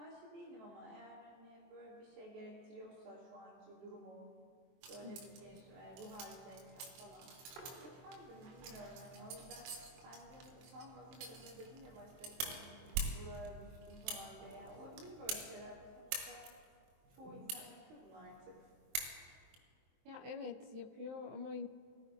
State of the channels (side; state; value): left; late; 23 ms